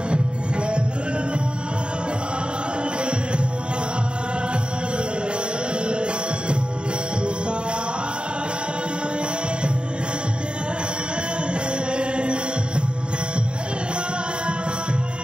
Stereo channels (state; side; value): late; left; 0.052 ms